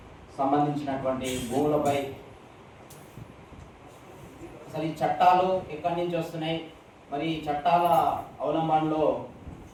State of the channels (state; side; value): identical; both; correlation 1.00